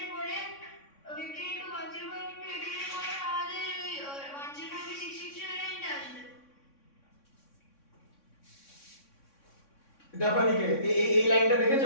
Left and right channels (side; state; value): right; late; 3.6 ms